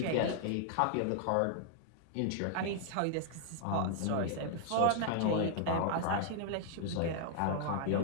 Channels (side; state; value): both; different; correlation -0.01